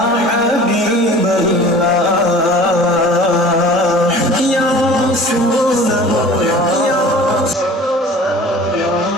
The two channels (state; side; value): normal; both; correlation 0.44